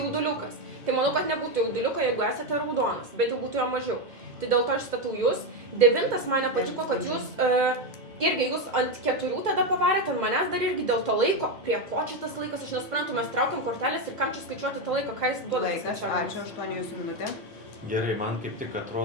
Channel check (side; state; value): both; normal; correlation 0.09